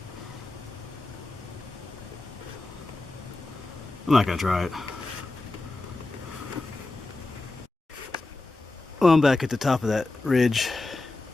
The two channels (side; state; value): right; quieter; 3.1 dB